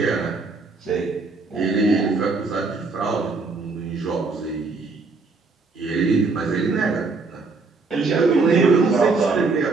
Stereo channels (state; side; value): quieter; left; 4.0 dB